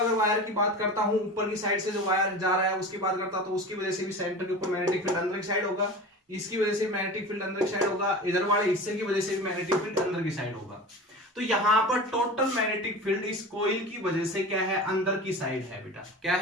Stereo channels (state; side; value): normal; both; correlation 0.33